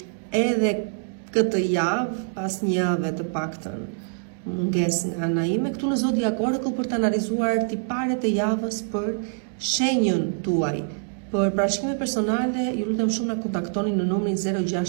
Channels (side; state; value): left; silent; digital silence